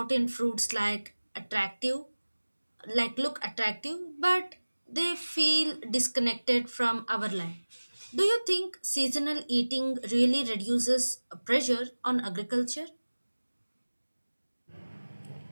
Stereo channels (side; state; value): both; inverted; correlation -1.00